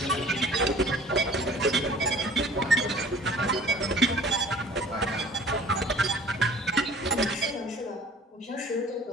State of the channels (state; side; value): normal; both; correlation 0.50